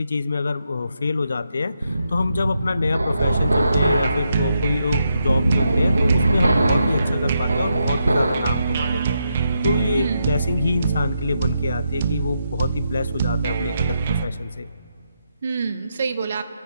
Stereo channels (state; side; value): inverted; both; correlation -0.81